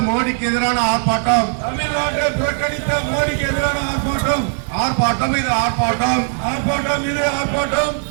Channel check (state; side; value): silent; left; digital silence